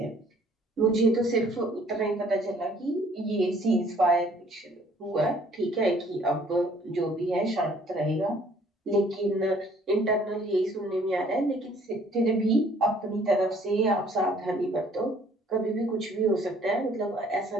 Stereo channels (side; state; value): both; normal; correlation 0.59